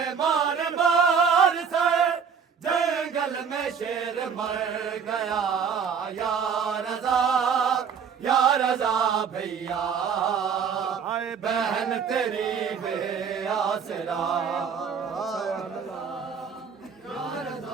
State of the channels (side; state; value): left; quieter; 6.7 dB